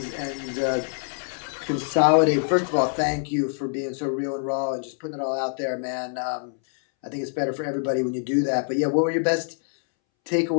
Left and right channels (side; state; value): right; silent; 62 dB below the other